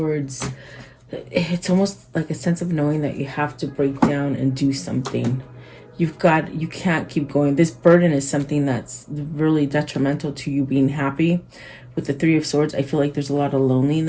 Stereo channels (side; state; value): both; identical; correlation 1.00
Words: it's almost like a sense of knowing that you have to break down and do something. You can't keep going. This burden is something that's really detrimental to you being happy. With the Three of Swords, I feel like there's a lot of